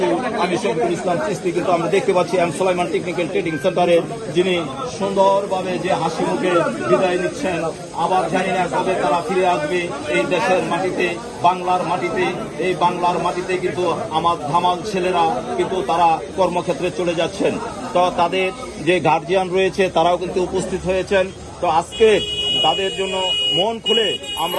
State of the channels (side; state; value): both; identical; correlation 1.00